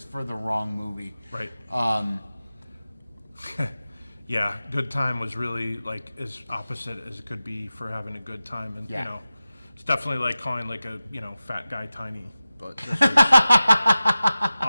for the wrong movie. Right. Yeah, good time was really like as opposite as it could be for having a good time, and Yeah. it's definitely like calling like a fat guy tiny, but this is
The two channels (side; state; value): both; inverted; correlation -0.95